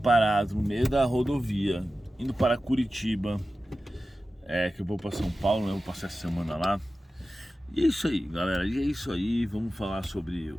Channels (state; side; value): normal; both; correlation 0.94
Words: no meio da rodovia, indo para Curitiba, que eu vou para São Paulo, né? Vou passar essa semana lá. E é isso aí, galera, e é isso aí. Vamos falar sobre o